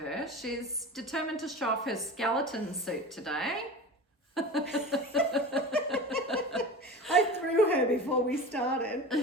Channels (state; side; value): normal; both; correlation 0.32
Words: She's determined to show off her skeleton suit today. I threw her before we